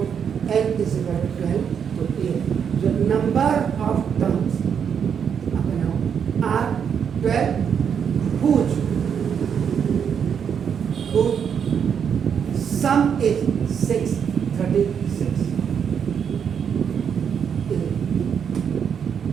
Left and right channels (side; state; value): left; quieter; 7.5 dB